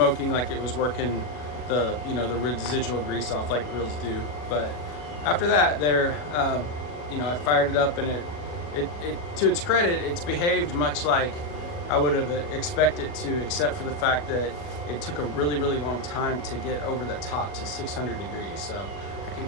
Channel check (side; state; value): right; late; 40 ms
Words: like it was working the, you know, the residual grease off like grills do. But after that, you know, I fired it up, and it to its credit, it's behaved much like I would have expected to, except for the fact that it took a really, really long time to get over the top to 600 degrees. So I can